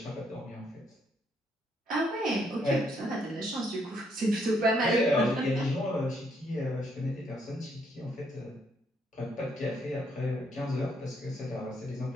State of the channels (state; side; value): normal; both; correlation 0.72